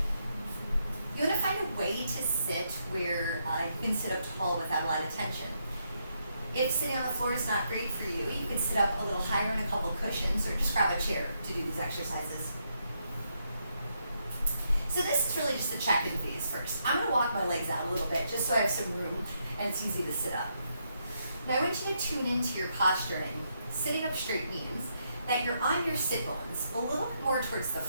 You want to find a way to sit where you can sit up tall without a lot of tension. If sitting on the floor is not great for you, you can sit up a little higher on a couple cushions or just grab a chair to do these exercises. So this is really just the check-in phase first. I'm going to walk my legs out a little bit just so I have some room and it's easy to sit up. Now I want you to tune into your posturing. Sitting up straight means that you're on your sit bones a little bit more towards the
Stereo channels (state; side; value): inverted; both; correlation -0.79